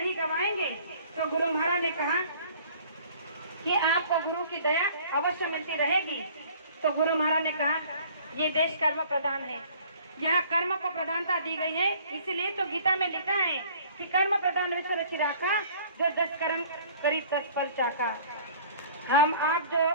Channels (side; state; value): both; inverted; correlation -0.52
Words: गवाएंगे, तो गुरु महाराज ने कहा कि आपको गुरु की दया अवश्य मिलती रहेगी। तो गुरु महाराज ने कहा ये देश कर्म प्रधान है, यहाँ कर्म को प्रधानता दी गई है। इसलिए तो गीता में लिखा है कि कर्म प्रधान विश्व रचि राखा, जो 10 कर्म करी 10 फल चाखा। हम आप जो